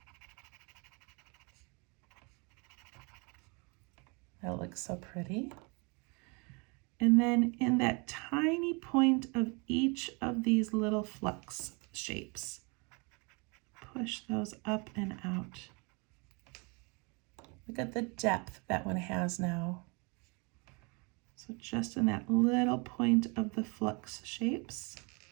That looks so pretty. And then in that tiny point of each of these little flux shapes, push those up and out. Look at the depth that one has now. So just in that little point of the flux shapes.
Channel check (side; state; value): left; quieter; 30.9 dB